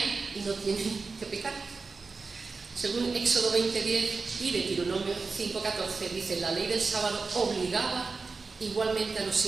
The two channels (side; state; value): left; quieter; 4.3 dB